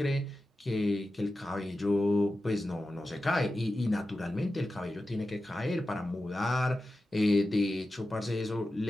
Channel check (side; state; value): both; normal; correlation 0.92